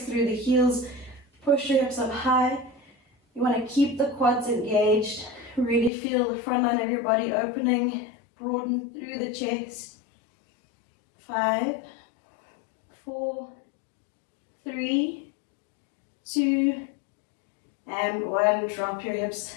through the heels. Push your hips up high. You want to keep the quads engaged. Really feel the front line of your body opening. Broaden through the chest. 5, 4, 3, 2, and 1. Drop your hips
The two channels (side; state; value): right; drops out; at 5.9 s